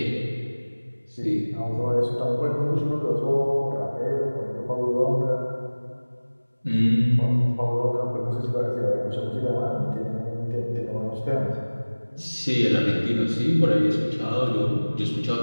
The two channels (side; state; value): both; inverted; correlation -1.00